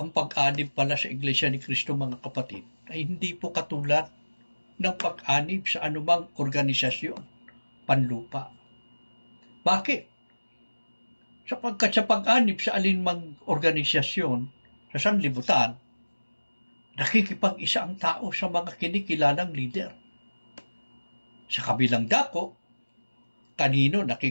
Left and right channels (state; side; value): inverted; both; correlation -1.00